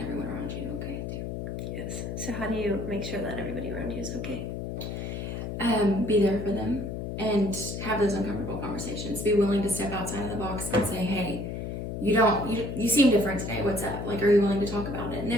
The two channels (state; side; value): noise; left; hum, 5 dB below the sound